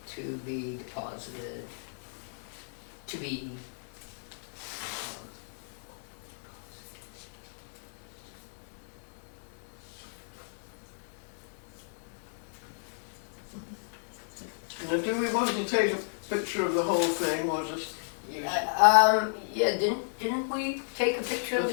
to be deposited, to be, Now, do we want to take a picture of the whole thing, or just use? yeah, didn't we take a picture of We'll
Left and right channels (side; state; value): right; silent; digital silence